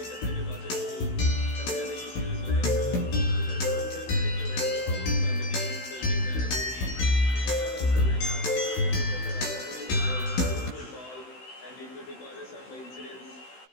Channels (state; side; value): late; right; 16 ms